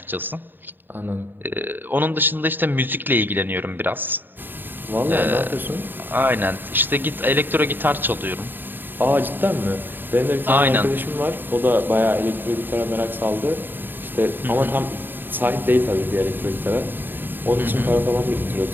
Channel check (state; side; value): late; left; 0.093 ms